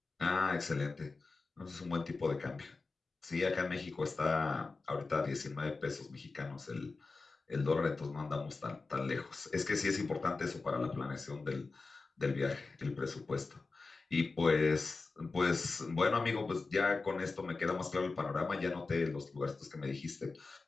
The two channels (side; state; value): right; quieter; 3.9 dB